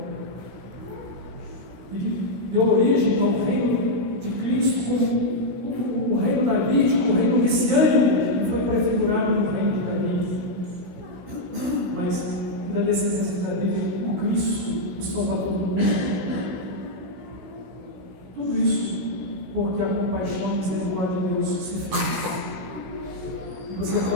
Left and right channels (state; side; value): late; left; 17 ms